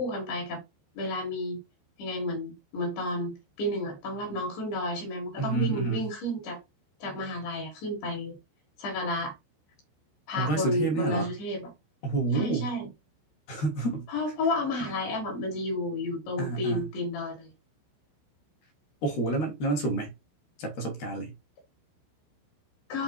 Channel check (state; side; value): late; right; 13 ms